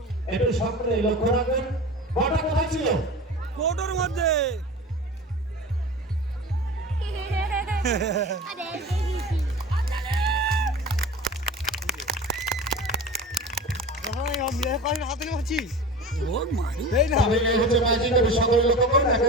একটু সকলে লক্ষ্য রাখবেন বলটা কোথায় ছিল কোটোর মধ্যে হাতে মারছি ওর মারি এই না তবে এই হচ্ছে ম্যাজিক, সকলে লক্ষ্য করুন এখন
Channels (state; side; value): normal; both; correlation 0.34